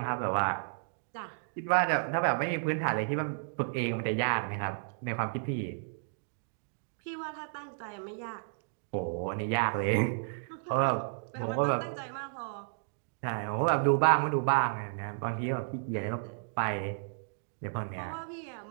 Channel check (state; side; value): silent; left; digital silence